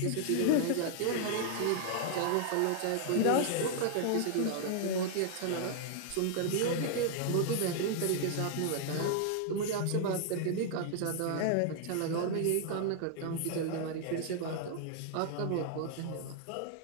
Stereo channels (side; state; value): both; different; correlation 0.00